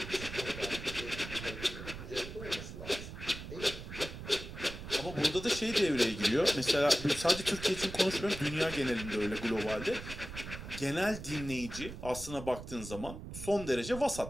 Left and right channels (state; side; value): noise; right; rumble, 10 dB below the sound